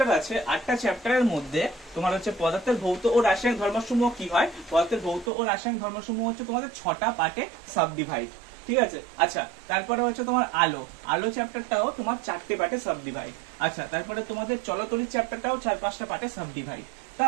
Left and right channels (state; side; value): drops out; left; at 5.3 s